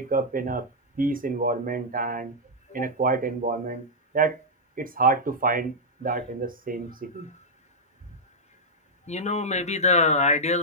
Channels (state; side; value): normal; both; correlation -0.06